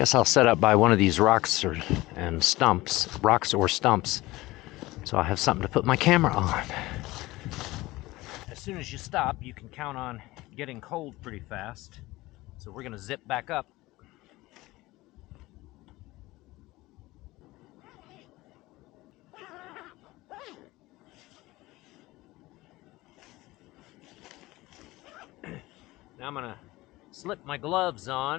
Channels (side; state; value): right; quieter; 19.3 dB